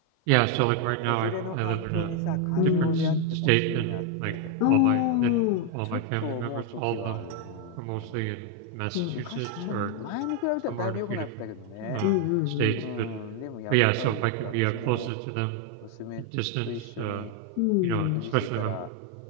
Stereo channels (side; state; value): both; different; correlation 0.01